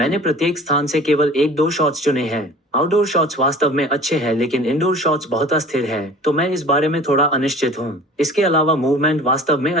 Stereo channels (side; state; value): both; normal; correlation 0.44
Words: प्रत्येक स्थान से केवल 1-2 शॉट्स चुने हैं। आउटडोर शॉट्स वास्तव में अच्छे हैं, लेकिन इंडोर शॉट्स बहुत अस्थिर हैं, तो मैं इस बारे में थोड़ा अनिश्चित हूँ। इसके अलावा मूवमेंट वास्तव में